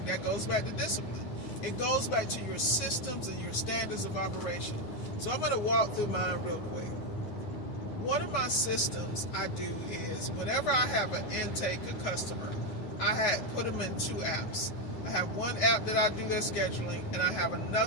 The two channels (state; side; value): late; right; 9.5 ms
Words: That goes back to discipline. It goes back to your systems and your standards of operation. So I'm going to walk through mine real quick. One of my systems I do is whenever I have an intake, a customer, I put them in two apps. I have one app that I do their scheduling, and I have